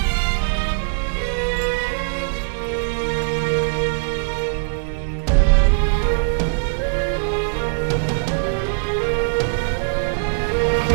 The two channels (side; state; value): left; silent; digital silence